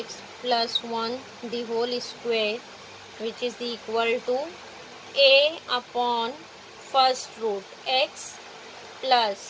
plus 1 the whole square, which is equal to a upon first root x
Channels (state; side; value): identical; both; correlation 1.00